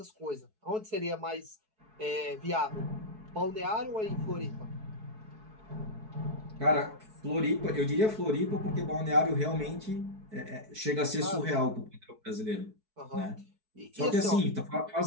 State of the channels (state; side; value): late; left; 4.6 ms